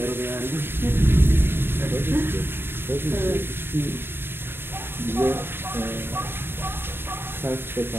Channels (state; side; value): late; left; 0.11 ms